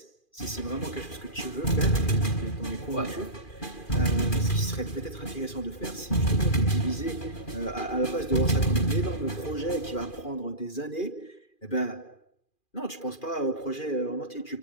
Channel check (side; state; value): right; late; 2.4 ms